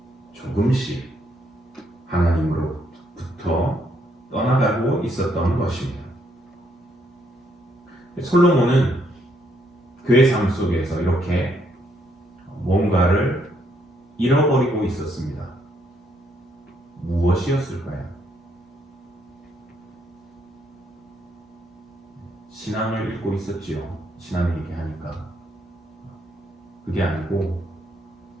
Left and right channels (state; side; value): normal; both; correlation 0.73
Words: 조금씩 하나님으로부터 떠나가고 있었던 것입니다. 솔로몬은 그의 삶 속에서 이렇게 뭔가를 잃어버리고 있었습니다. 무엇이었을까요? 신앙을 잃고 있었지요. 신앙 얘기하니까. 그게 아니고